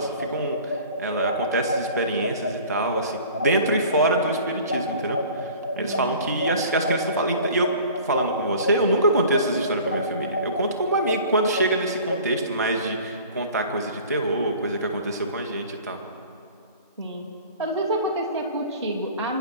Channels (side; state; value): both; inverted; correlation -0.45